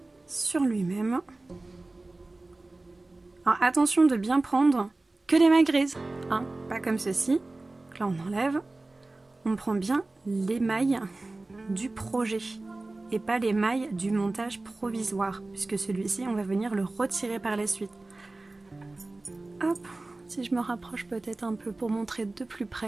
sur lui-même. Alors attention de bien prendre que les mailles grises, hein, pas comme ceci. Donc là on enlève, on prend bien les mailles du projet et pas les mailles du montage provisoire, puisque celui-ci on va venir le retirer par la suite. Hop, si je me rapproche peut-être un peu pour montrer de plus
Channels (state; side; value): quieter; left; 3.1 dB